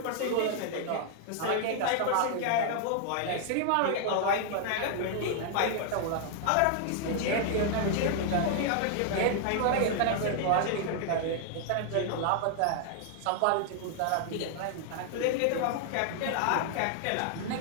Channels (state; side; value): different; both; correlation 0.00